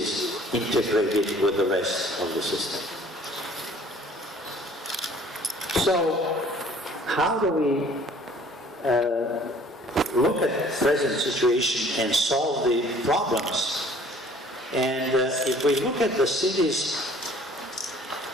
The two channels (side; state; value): both; normal; correlation 0.54